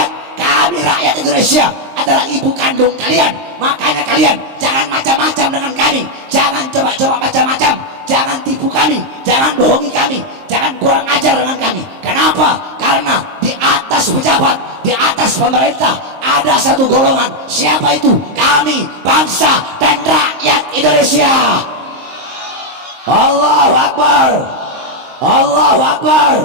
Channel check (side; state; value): left; late; 23 ms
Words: Kami rakyat Indonesia adalah ibu kandung kalian. Makanya kalian jangan macam-macam dengan kami, jangan coba-coba macam-macam, jangan tipu kami, jangan bohongi kami, jangan kurang ajar dengan kami. Kenapa? Karena di atas pejabat, di atas pemerintah ada satu golongan. Siapa itu? Kami, bangsa dan rakyat Indonesia. Allahu Akbar, Allahu Akbar.